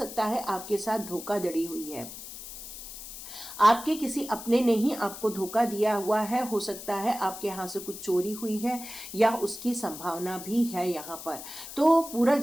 है आपके साथ धोखाधड़ी हुई है। आपके किसी अपने ने ही आपको धोखा दिया हुआ है। हो सकता है आपके यहाँ से कुछ चोरी हुई है या उसकी संभावना भी है यहाँ पर। तो पूरा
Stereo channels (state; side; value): noise; left; hiss, 12 dB below the sound